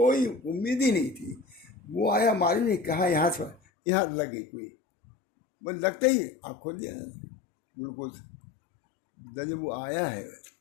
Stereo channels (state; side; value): drops out; right; at 3.6 s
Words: امید ہی نہیں تھی۔ وہ آیا معلوم نہیں کہاں، یہاں لگ گئی کوئی، بس لگتے ہی آپ کھول دیا گلوکوز۔ جب وہ آیا ہے